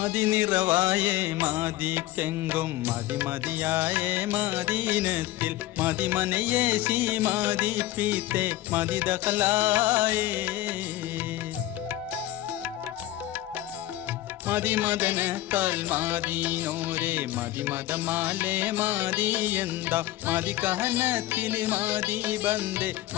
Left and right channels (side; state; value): right; quieter; 15.5 dB